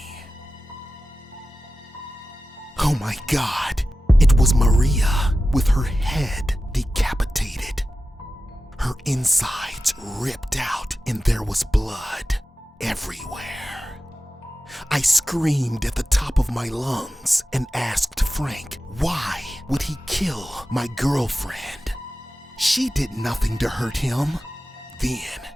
Oh my God, it was Maria with her head decapitated. Her insides ripped out and there was blood everywhere. I screamed at the top of my lungs and asked Frank, why would he kill my girlfriend? She did nothing to hurt him. Then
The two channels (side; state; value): both; normal; correlation 0.94